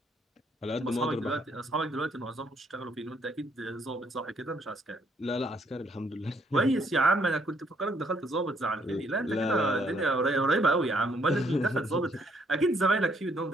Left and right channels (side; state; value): both; normal; correlation 0.69